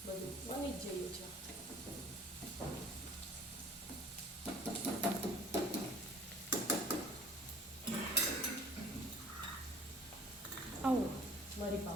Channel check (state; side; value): normal; both; correlation 0.50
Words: બધું બની જ જઈએ છે. આવો મરી